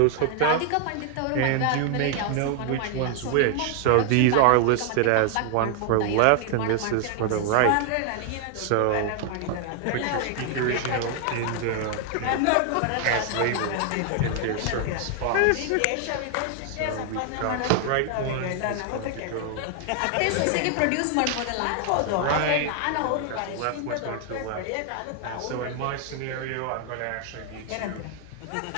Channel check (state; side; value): different; both; correlation 0.00